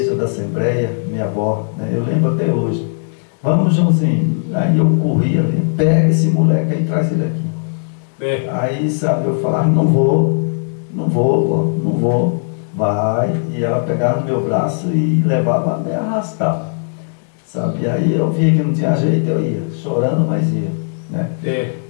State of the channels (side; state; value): right; silent; digital silence